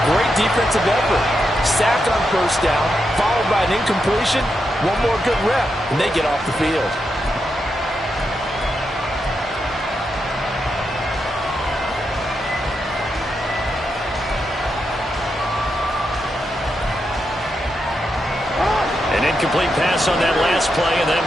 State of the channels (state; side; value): normal; both; correlation 0.84